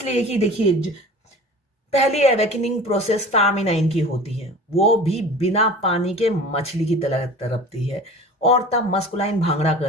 कि देखिए, पहली अवेकनिंग प्रोसेस फेमिनाइन की होती है, वो भी बिना पानी के मछली की तरह तड़पती है, और तब मस्कुलाइन भांगड़ा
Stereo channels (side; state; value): both; normal; correlation 0.40